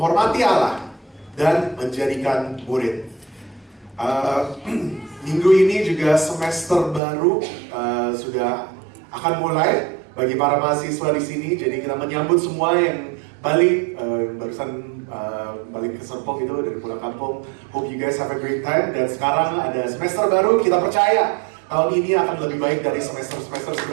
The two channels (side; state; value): left; drops out; at 7.0 s